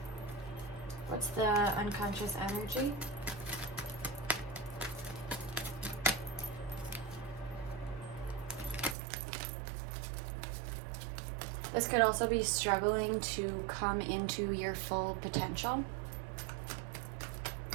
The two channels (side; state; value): left; drops out; at 9.0 s